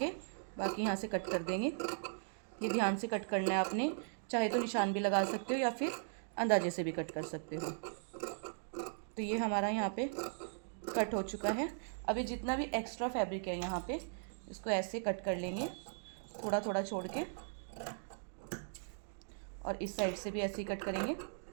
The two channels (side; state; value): left; silent; digital silence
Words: बाकी यहाँ से कट कर देंगे। ये ध्यान से कट करना है आपने, चाहे तो निशान भी लगा सकते हो या फिर अंदाजे से भी कट कर सकते हो। तो ये हमारा यहाँ पे कट हो चुका है। अभी जितना भी एक्स्ट्रा फैब्रिक है यहाँ पे इसको ऐसे कट कर लेंगे, थोड़ा थोड़ा छोड़ के, और इस साइड से भी ऐसे ही कट करेंगे।